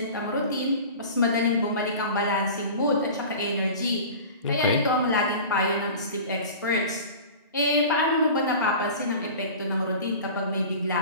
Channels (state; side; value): inverted; both; correlation -0.38